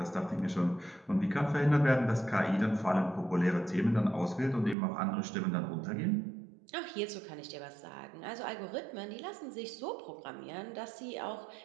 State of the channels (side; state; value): left; drops out; at 4.8 s